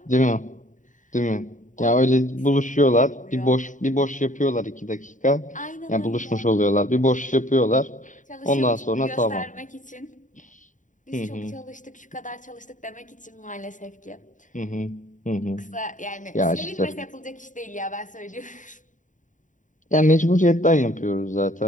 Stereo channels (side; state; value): right; late; 0.37 ms